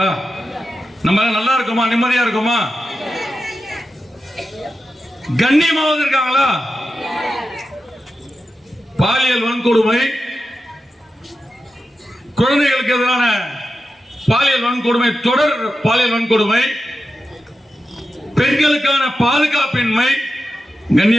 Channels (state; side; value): normal; both; correlation 0.91